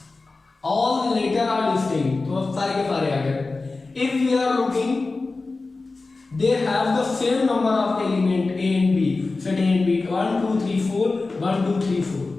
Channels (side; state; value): right; quieter; 3.6 dB